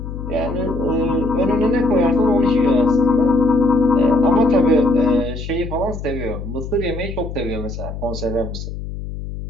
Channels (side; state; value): left; noise; hum, 8 dB below the sound